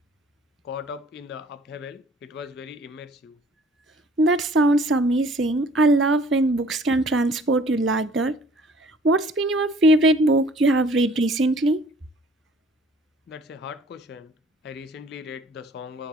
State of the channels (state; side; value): normal; both; correlation 0.54